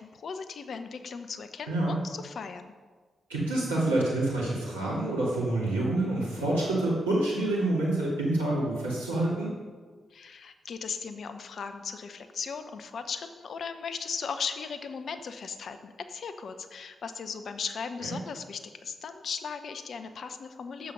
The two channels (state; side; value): normal; both; correlation 0.78